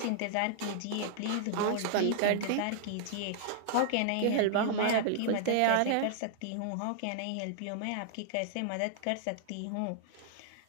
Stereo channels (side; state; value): both; different; correlation -0.01